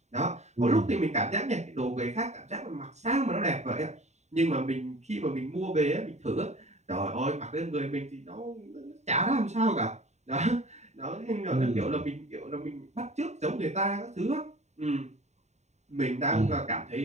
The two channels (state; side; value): late; left; 0.33 ms